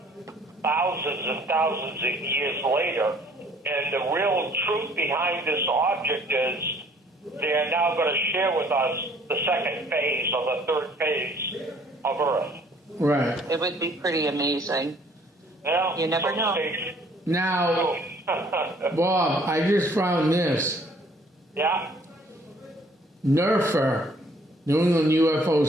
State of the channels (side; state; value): both; normal; correlation 0.59